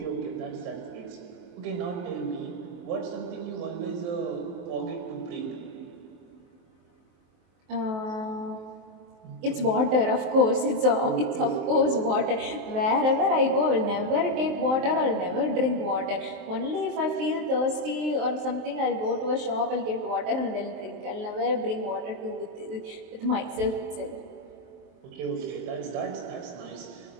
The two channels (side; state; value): left; late; 23 ms